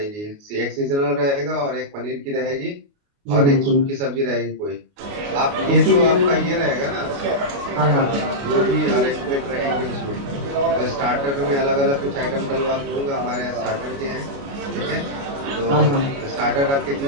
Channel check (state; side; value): late; left; 29 ms